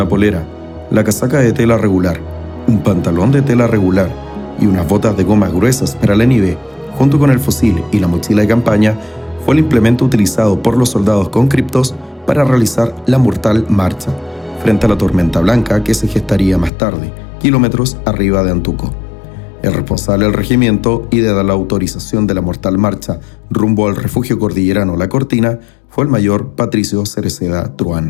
polera, la casaca de tela regular, un pantalón de tela regular y unas botas de gomas gruesas para la nieve, junto con el fusil y la mochila de campaña, fue el implemento utilizado por los soldados conscriptos para realizar la mortal marcha, frente a la tormenta blanca que se gestaría más tarde, kilómetros arriba de Antuco. El responsable del regimiento y de dar la autorización de la mortal marcha rumbo al refugio cordillerano La Cortina fue el mayor Patricio Cereceda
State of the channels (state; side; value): drops out; right; at 16.7 s